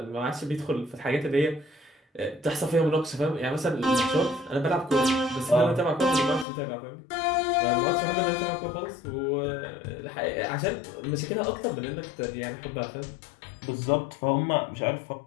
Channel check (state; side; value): drops out; right; at 6.5 s